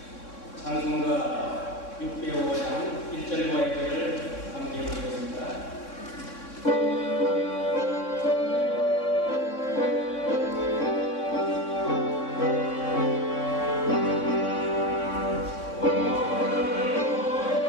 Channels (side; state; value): right; late; 3.6 ms